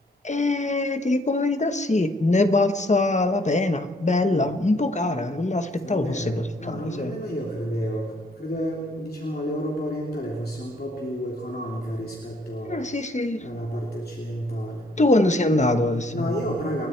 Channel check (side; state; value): both; normal; correlation 0.65